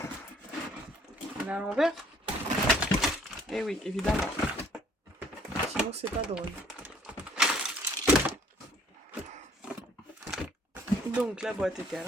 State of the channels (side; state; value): both; normal; correlation 0.60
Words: On est à l'envers. Eh oui, évidemment. Sinon, c'est pas drôle. Donc, la boîte était à